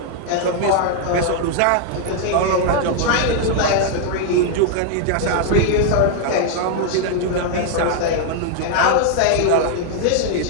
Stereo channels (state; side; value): different; both; correlation 0.00